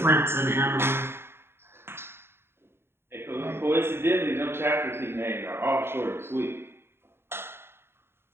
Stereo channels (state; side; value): late; left; 0.11 ms